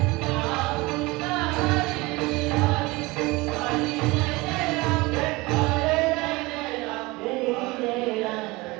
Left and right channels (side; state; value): left; quieter; 22.8 dB